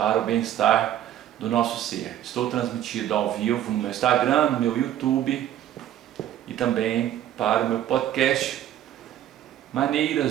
o bem-estar do nosso ser. Estou transmitido ao vivo no meu Instagram, no meu YouTube e também para o meu podcast.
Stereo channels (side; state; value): left; quieter; 11.7 dB